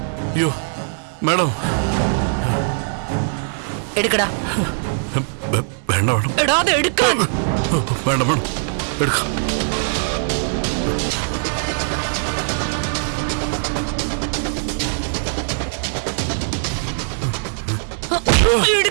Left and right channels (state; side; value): silent; left; digital silence